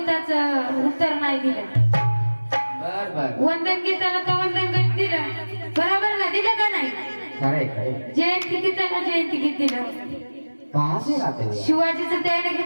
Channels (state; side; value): inverted; both; correlation -1.00